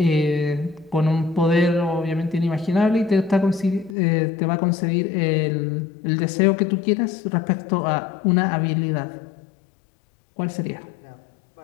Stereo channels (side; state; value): right; drops out; at 4.0 s